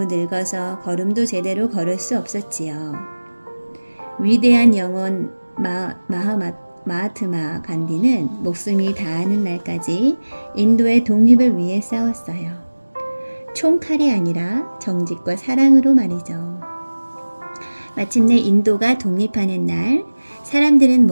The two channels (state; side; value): inverted; both; correlation -1.00